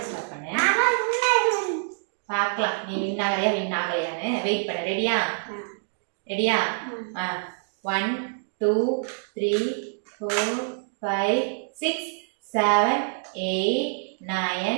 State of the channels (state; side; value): silent; left; digital silence